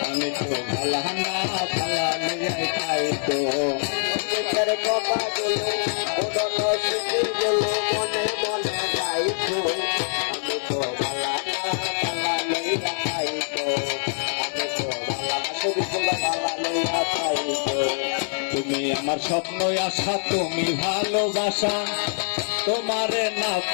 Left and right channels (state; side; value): silent; right; digital silence